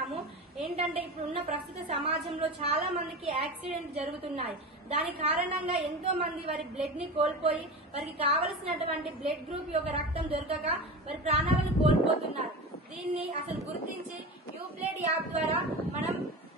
ఏంటంటే ఇప్పుడున్న ప్రస్తుత సమాజంలో చాలా మందికి యాక్సిడెంట్ జరుగుతున్నాయి. దాని కారణంగా ఎంతో మంది వారి బ్లడ్ ని కోల్పోయి వారికి కావలసినటువంటి బ్లడ్ గ్రూప్ యొక్క రక్తం దొరకక వారి ప్రాణాలను కోల్పోతున్నారు. దీన్ని అసలు గుర్తించి యూబ్లెడ్ యాప్ ద్వారా మనం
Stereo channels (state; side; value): normal; both; correlation 0.28